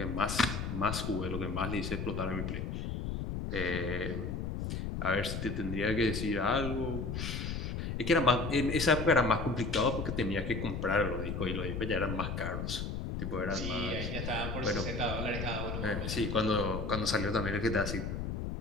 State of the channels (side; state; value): left; noise; rumble, 3 dB below the sound